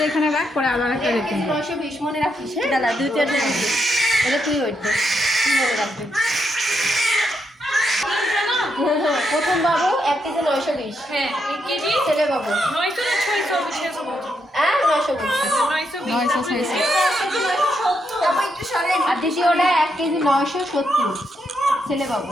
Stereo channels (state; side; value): normal; both; correlation 0.80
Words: এখানে রাখ পরে আবার একটা র্যাপিং 920 মনে রাখিস দাদা দুইটা এটা তুই ওইটা মনে রাখবি প্রথম বাবু 1 কেজি 920 হ্যাঁ 1 কেজি ছেলে বাবু 900 না 600 হ্যাঁ 920 আর দ্বিতীয়টা 1 কেজি 970 ছেলে বাবু